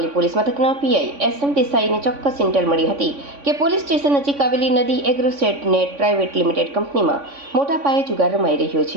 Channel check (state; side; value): late; left; 3.5 ms